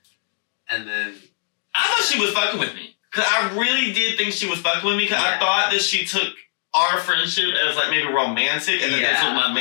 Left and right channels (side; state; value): right; silent; digital silence